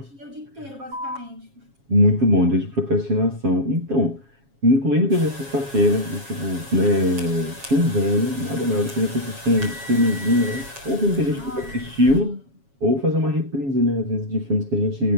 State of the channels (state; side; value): late; left; 7.3 ms